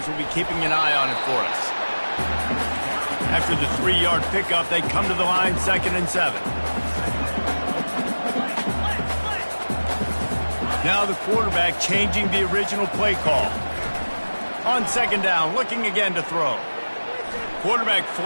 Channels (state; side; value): inverted; both; correlation -1.00